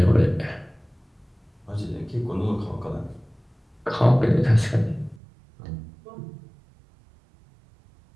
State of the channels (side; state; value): left; drops out; at 5.2 s